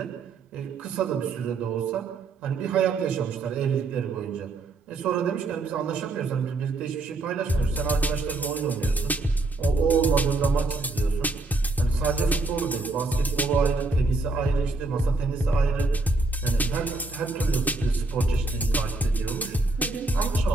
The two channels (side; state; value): left; quieter; 3.3 dB